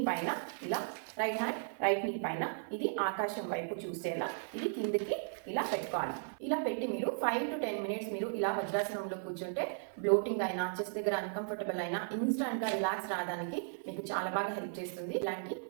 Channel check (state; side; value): silent; left; 54 dB below the other